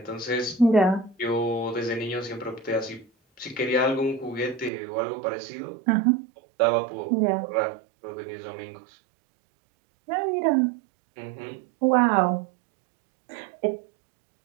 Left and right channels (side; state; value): left; drops out; at 4.7 s